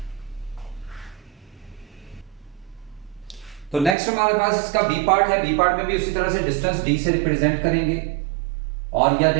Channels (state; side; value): drops out; left; at 4.0 s